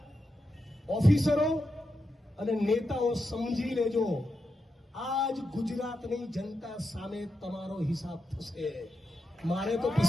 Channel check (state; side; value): normal; both; correlation 0.87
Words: ઓફિસરો અને નેતાઓ સમજી લેજો, આજ ગુજરાતની જનતા સામે તમારો હિસાબ થશે. મારે તો